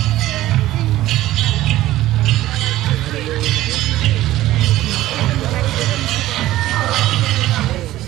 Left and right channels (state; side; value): quieter; left; 15.3 dB